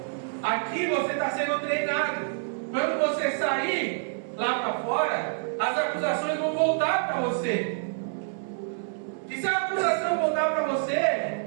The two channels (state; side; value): silent; left; digital silence